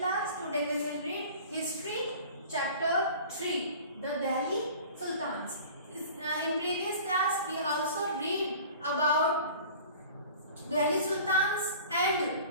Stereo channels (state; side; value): inverted; both; correlation -0.43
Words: today we will read History chapter 3, the Delhi Sultans. In previous class we also read about Delhi Sultans and